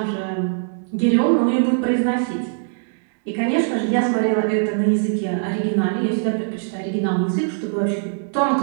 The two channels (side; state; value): left; silent; digital silence